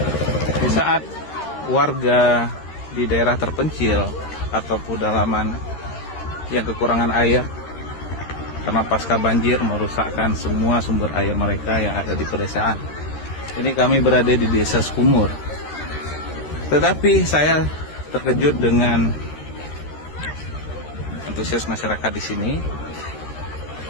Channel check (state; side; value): late; right; 13 ms